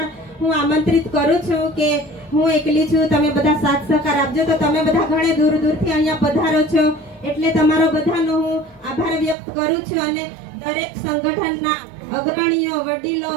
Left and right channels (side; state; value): left; drops out; at 9.3 s